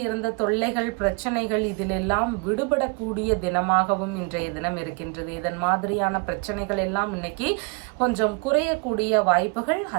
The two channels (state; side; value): quieter; left; 31.5 dB